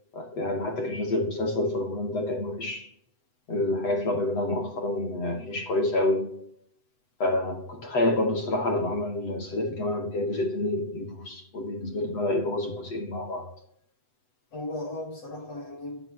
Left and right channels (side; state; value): right; late; 8.0 ms